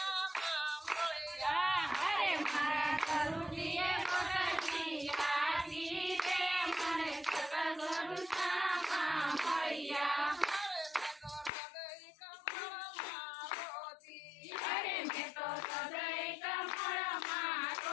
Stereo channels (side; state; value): right; drops out; at 11.5 s